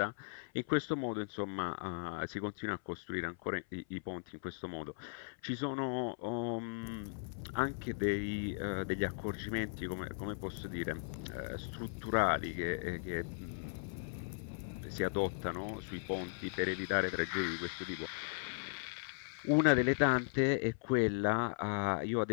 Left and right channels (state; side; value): silent; right; 53 dB below the other